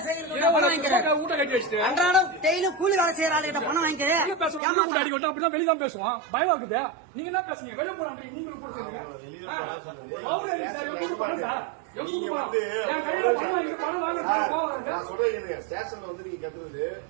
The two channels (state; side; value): drops out; left; at 4.6 s